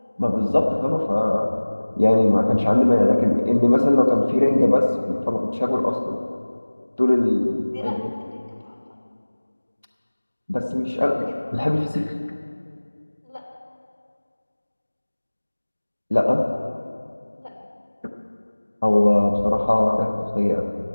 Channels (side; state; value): both; inverted; correlation -1.00